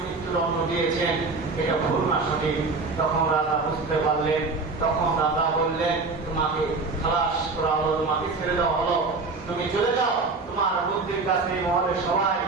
মৃত্যুদণ্ড দিয়েছেন, এটা ভুল না সঠিক। তখন রাজা বুঝতে পারলেন, তখন রাজা বললেন তোমাকে খালাস করা হলো, তোমাকে ছেড়ে দেওয়া হলো, তুমি চলে যাও, তোমার বুদ্ধির কাছে মহলে সবাই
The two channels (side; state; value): left; quieter; 3.9 dB